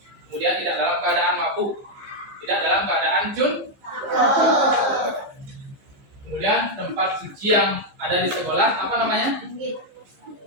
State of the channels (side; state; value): left; late; 15 ms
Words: kemudian tidak dalam keadaan mabuk, tidak dalam keadaan kemudian tempat suci yang ada di sekolah apa namanya?